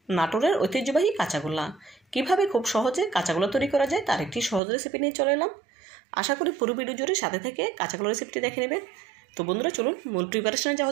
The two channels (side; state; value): left; drops out; at 4.6 s